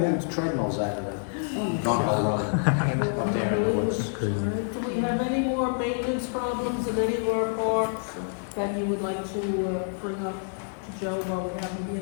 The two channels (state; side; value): silent; right; 60 dB below the other